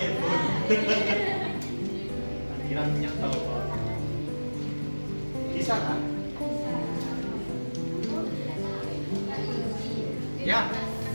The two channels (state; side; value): inverted; both; correlation -1.00